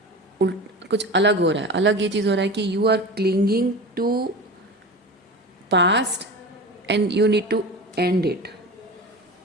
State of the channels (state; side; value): normal; both; correlation 0.31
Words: कुछ अलग हो रहा है। अलग ये चीज़ हो रहा है कि you are clinging to past and you need to end it.